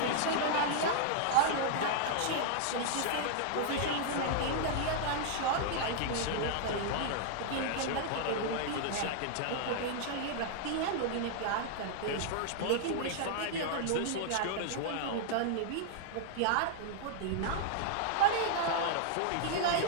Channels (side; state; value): both; different; correlation -0.01